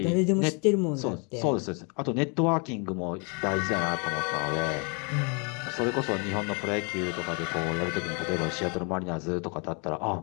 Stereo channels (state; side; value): quieter; right; 34.3 dB